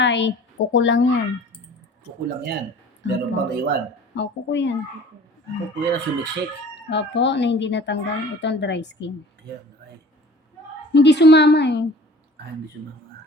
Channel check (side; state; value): both; normal; correlation 0.46